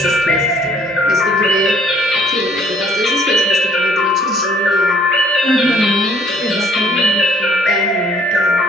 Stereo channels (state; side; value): normal; both; correlation 0.60